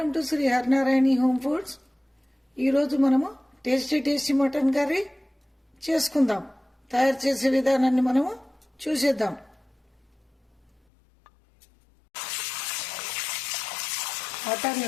to Shri Harinarayani home foods. ఈరోజు మనము tasty mutton curry చేసుకుందాం. తయారు చేసే విధానాన్ని మనము చూసేద్దాం. మటన్ని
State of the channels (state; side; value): drops out; right; at 10.7 s